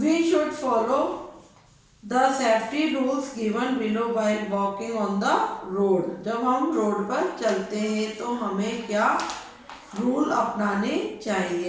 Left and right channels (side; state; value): both; identical; correlation 1.00